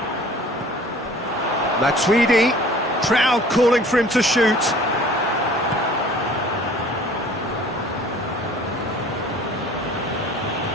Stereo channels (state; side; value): normal; both; correlation 0.49